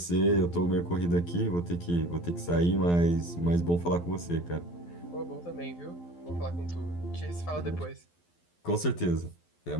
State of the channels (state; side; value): late; right; 12 ms